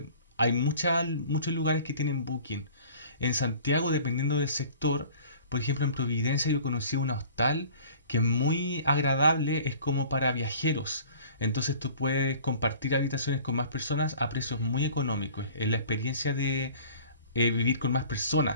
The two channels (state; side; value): inverted; both; correlation -0.47